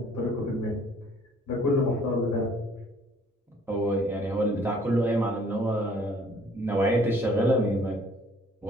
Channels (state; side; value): normal; both; correlation 0.57